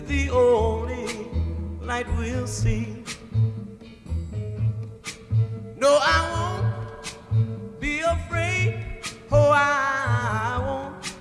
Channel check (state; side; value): identical; both; correlation 1.00